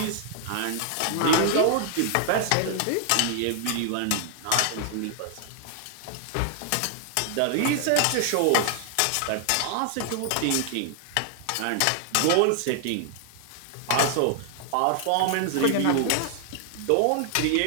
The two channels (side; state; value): both; different; correlation 0.00